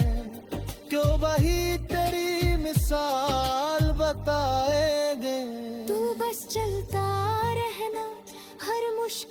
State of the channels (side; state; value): both; identical; correlation 1.00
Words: क्यों वही तेरी मिसाल बताएंगे। तू बस चलता रहना, हर